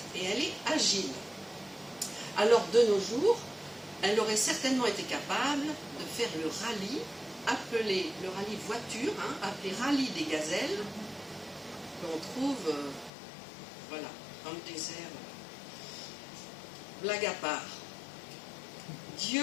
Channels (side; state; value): right; drops out; at 13.1 s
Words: et elle est agile. Alors de nos jours, elle aurait certainement été capable de faire le rallye, appelé le rallye voiture, appelé rallye des gazelles, qu'on trouve voilà, dans le désert. Blague à part.